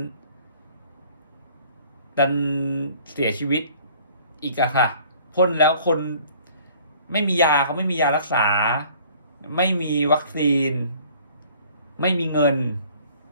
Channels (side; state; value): both; inverted; correlation -0.54